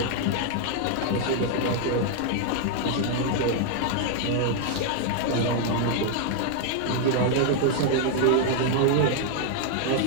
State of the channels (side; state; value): both; different; correlation 0.00